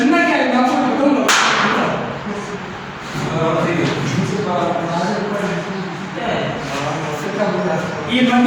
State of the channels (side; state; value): both; identical; correlation 1.00